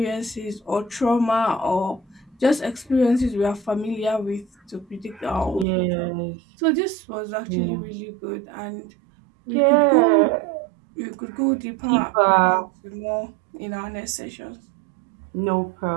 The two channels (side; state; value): left; drops out; at 5.7 s